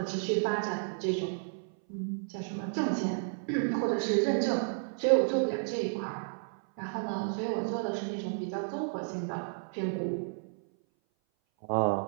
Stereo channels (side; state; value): left; silent; 56 dB below the other